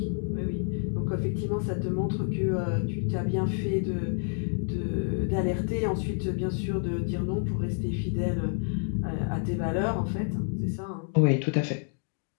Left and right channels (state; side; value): silent; right; 59 dB below the other